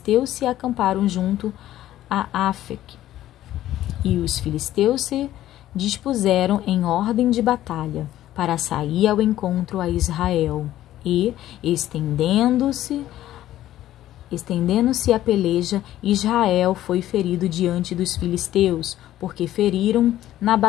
se acamparam junto a Afec. E os filisteus se dispuseram em ordem de batalha para sair ao encontro a Israel. E, estendendo-se a peleja, Israel foi ferido diante dos filisteus, porque feriram na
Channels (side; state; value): right; quieter; 13.4 dB